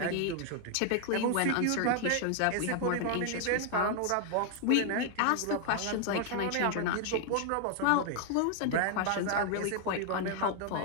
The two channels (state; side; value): different; both; correlation 0.00